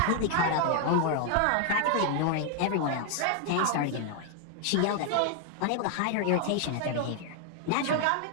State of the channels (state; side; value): different; both; correlation 0.00